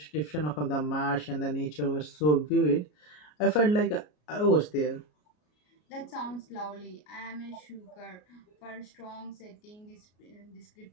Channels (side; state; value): right; late; 33 ms